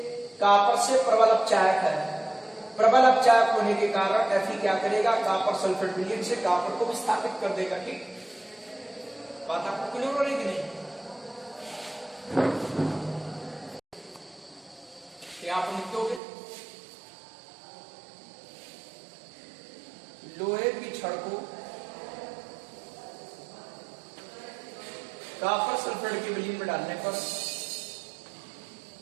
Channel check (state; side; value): drops out; left; at 16.2 s